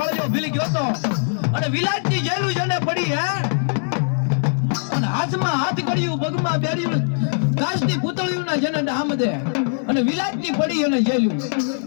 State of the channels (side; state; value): right; silent; digital silence